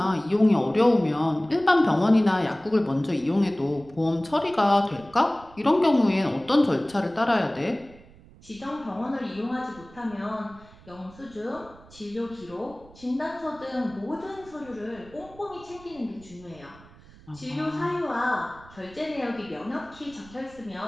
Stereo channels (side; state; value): right; noise; rumble, 23 dB below the sound